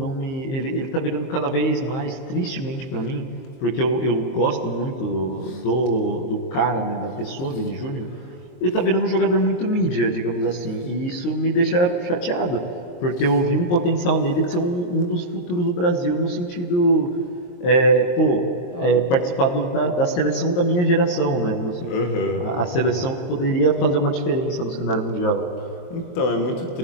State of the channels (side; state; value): right; late; 23 ms